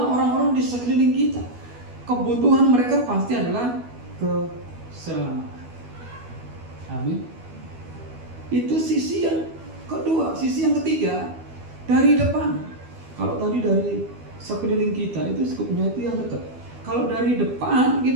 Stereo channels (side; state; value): left; late; 12 ms